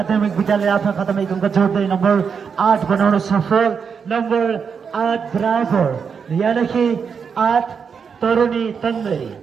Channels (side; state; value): left; quieter; 6.3 dB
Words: विद्यालय आफ्नो खातामा एक अङ्क जोड्दै नम्बर 8 बनाउन सफल। नम्बर 8 बराबर यानिकि 8 तरुणी तन्दै।